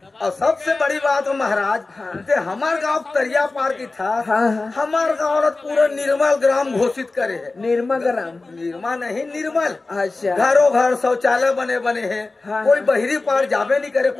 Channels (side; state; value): right; quieter; 3.4 dB